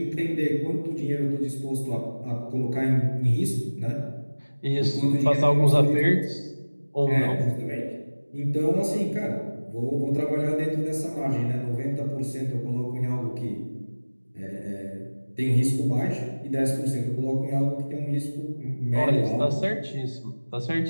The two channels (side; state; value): both; inverted; correlation -1.00